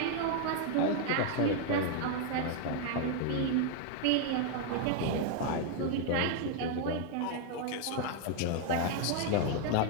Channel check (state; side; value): different; both; correlation 0.00